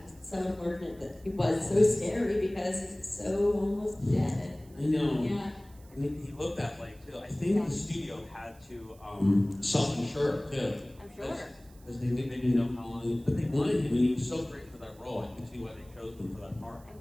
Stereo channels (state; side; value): noise; right; hiss, 27 dB below the sound